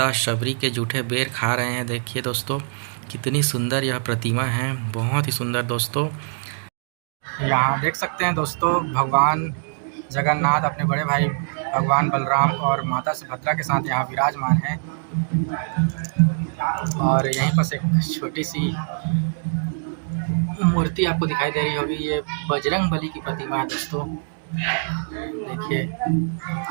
शबरी के जूठे बेर खा रहे हैं। देखिए दोस्तों, कितनी सुंदर यह प्रतिमा है, बहुत ही सुंदर दोस्तों। यहाँ देख सकते हैं दोस्तों, भगवान जगन्नाथ अपने बड़े भाई भगवान बलराम और माता सुभद्रा के साथ यहाँ विराजमान हैं। और यहीं पर एक छोटी सी मूर्ति आपको दिखाई दे रही होगी, ये बजरंगबली की प्रतिमा है दोस्तों। देखिए,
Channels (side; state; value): left; silent; digital silence